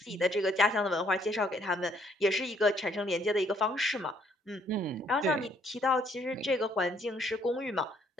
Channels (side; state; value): both; normal; correlation 0.67